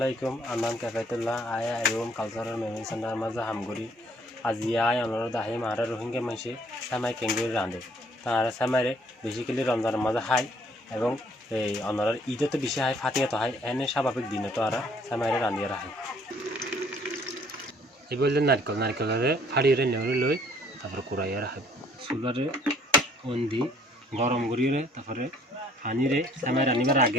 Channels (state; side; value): normal; both; correlation 0.60